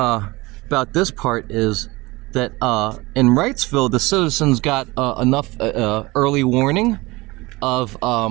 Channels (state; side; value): quieter; left; 22.1 dB